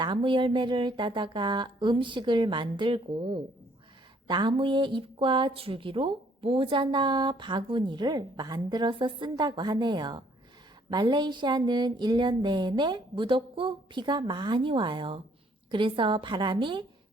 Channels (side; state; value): both; normal; correlation 0.64